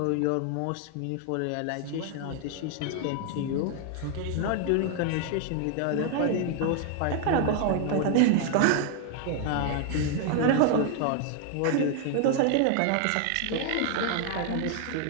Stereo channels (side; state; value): both; different; correlation 0.00